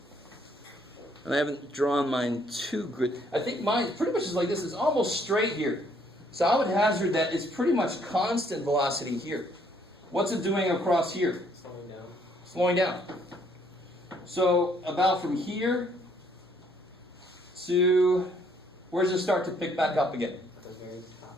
And I haven't drawn mine too good. I think mine pretty much is like this. It's almost straight here. So I would hazard that it's pretty much constant velocity here. What's it doing across here? Slowing down. Slowing down. So about from here to, where does it start to pick back up again? The very top.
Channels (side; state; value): both; normal; correlation 0.66